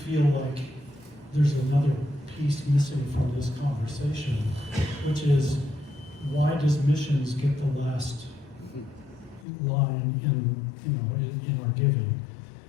like there's another piece missing from this conversation, which is, why does missions get the last line in our giving?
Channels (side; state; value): right; drops out; at 9.5 s